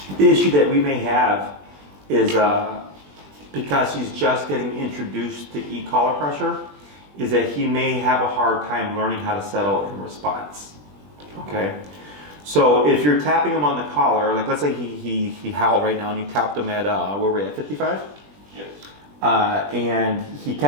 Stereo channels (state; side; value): late; left; 20 ms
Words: The issue that we may have is because he's just getting introduced to e-collar pressure, is that he may have a hard time learning how to settle in response. Okay? So if you're tapping him on the collar, like let's say he howled right now and you tapped him at, where we're at, 55? Yes. And he